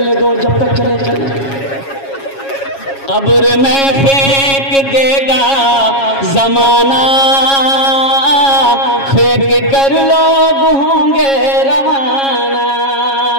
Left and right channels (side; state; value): right; late; 7.3 ms